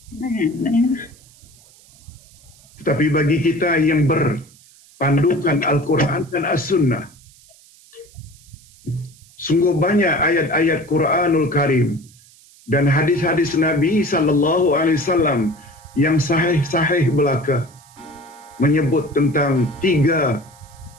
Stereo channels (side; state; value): right; noise; hiss, 26 dB below the sound